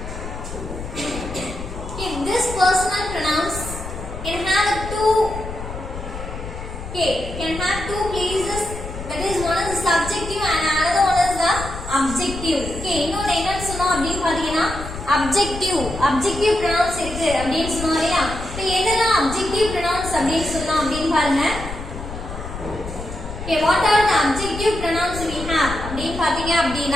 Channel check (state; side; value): noise; left; rumble, 9 dB below the sound